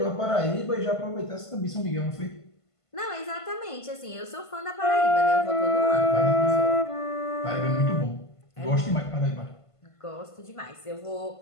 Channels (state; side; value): late; right; 1.5 ms